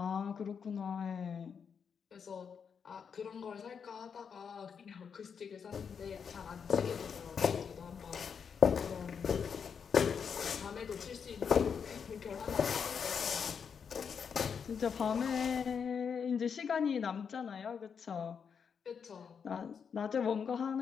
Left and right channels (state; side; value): quieter; right; 6.7 dB